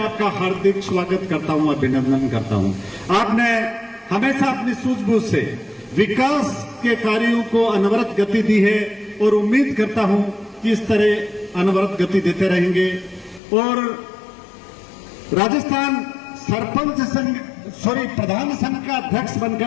हार्दिक स्वागत करता हूं, अभिनंदन करता हूं। आपने हमेशा अपनी सूझबूझ से विकास के कार्यों को अनवरत गति दी है और उम्मीद करता हूं कि इस तरह अनवरत गति देते रहेंगे और राजस्थान सरपंच संघ प्रधान संघ का अध्यक्ष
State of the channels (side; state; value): right; drops out; at 13.4 s